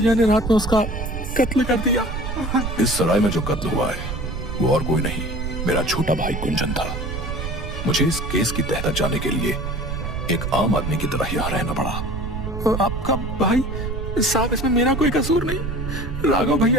ने रात में उसका कत्ल कर दिया। इस सराय में जो कत्ल हुआ है वो और कोई नहीं, मेरा छोटा भाई कुंजन था। मुझे इस केस की तह तक जाने के लिए एक आम आदमी की तरह यहाँ रहना पड़ा। आपका भाई? साहब इसमें मेरा कोई कसूर नहीं। राघव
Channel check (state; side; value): noise; right; rumble, 5 dB below the sound